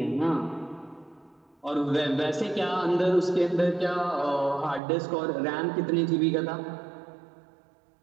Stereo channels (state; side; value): drops out; left; at 4.8 s